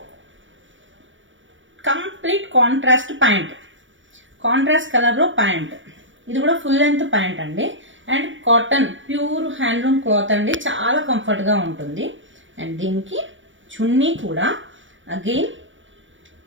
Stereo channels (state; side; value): late; left; 0.56 ms